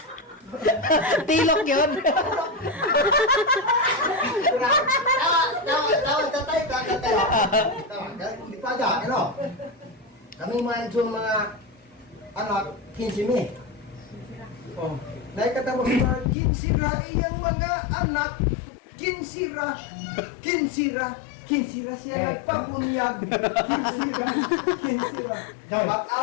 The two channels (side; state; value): right; drops out; at 16.4 s